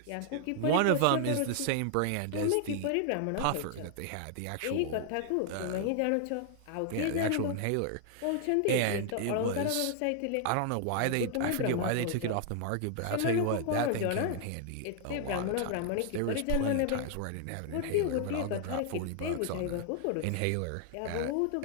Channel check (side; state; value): both; different; correlation 0.00